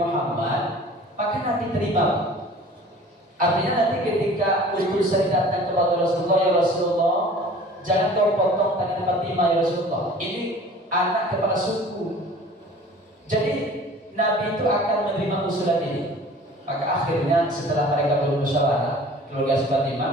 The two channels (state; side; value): normal; both; correlation 0.46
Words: maka nanti terima. Artinya nanti ketika utusan datang kepada Rasulullah, ya Rasulullah, jangan kau potong tangan Fatimah ya Rasulullah, ini anak kepala suku. Jadi Nabi itu akan menerima usulan ini. Maka akhirnya setelah mereka bermusyawarah, keluarga Fatimah,